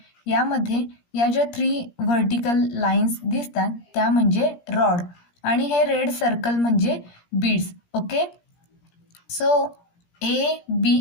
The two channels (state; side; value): late; right; 17 ms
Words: यामध्ये या ज्या 3 व्हर्टिकल लाईन्स दिसतात त्या म्हणजे रॉड आणि हे रेड सर्कल म्हणजे beads. Okay, so A,